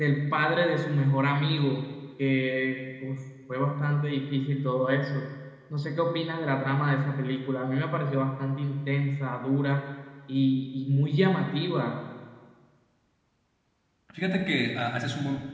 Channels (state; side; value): identical; both; correlation 1.00